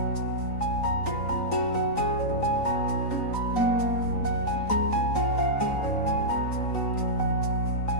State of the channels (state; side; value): late; right; 3.9 ms